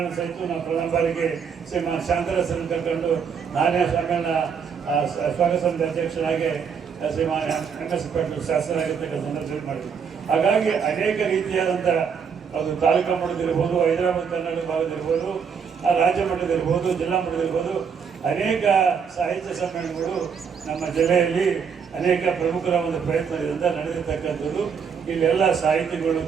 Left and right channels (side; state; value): left; quieter; 6.6 dB